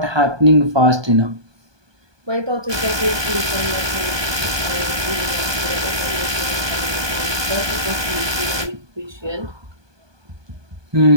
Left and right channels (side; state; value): left; late; 1.2 ms